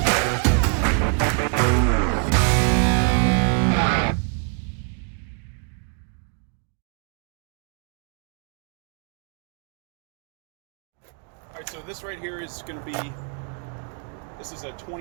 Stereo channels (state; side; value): quieter; left; 37.9 dB